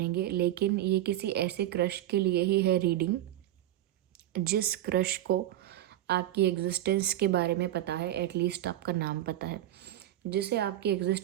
लेकिन ये किसी ऐसे क्रश के लिए ही है रीडिंग जिस क्रश को आपकी एग्जिस्टेंस के बारे में पता है, एटलीस्ट आपका नाम पता है। जिसे आपकी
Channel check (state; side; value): quieter; left; 13.4 dB